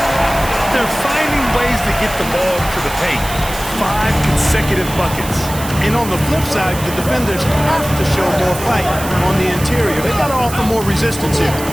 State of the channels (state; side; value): noise; right; hiss, 11 dB below the sound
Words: They're finding ways to get the ball to the paint. 5 consecutive buckets. And on the flip side, the defenders have to show more fight on the interior. They got to offer more resistance here.